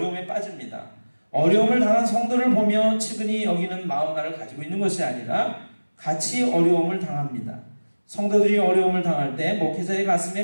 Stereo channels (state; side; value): inverted; both; correlation -1.00